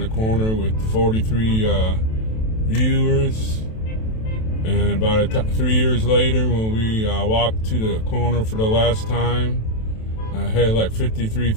corner with 43 viewers, and about 3 years later, when we walked to the corner for the last time, I had like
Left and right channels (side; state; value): right; late; 27 ms